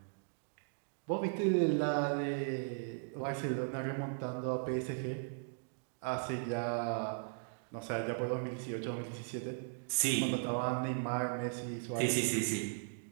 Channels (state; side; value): silent; left; digital silence